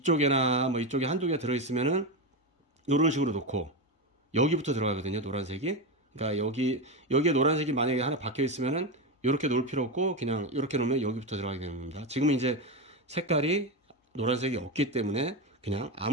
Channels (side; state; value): both; normal; correlation 0.14